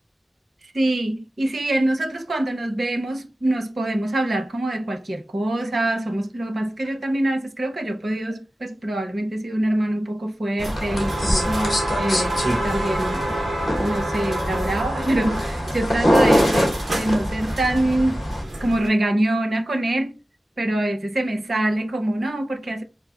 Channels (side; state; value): both; normal; correlation 0.95